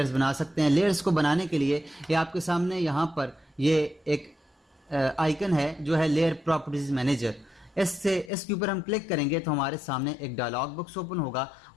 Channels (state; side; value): drops out; right; at 8.3 s